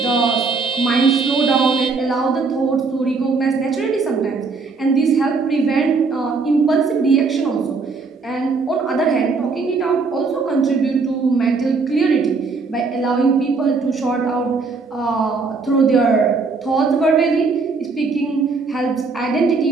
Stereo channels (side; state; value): left; quieter; 4.4 dB